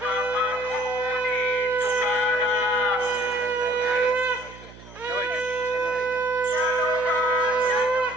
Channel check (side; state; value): right; noise; hum, 19 dB below the sound